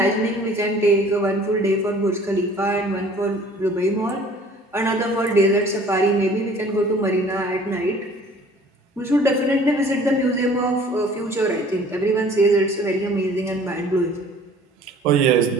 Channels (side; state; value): both; normal; correlation 0.51